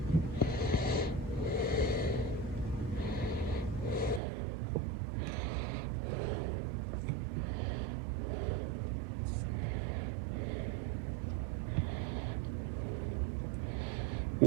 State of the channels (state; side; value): drops out; left; at 4.2 s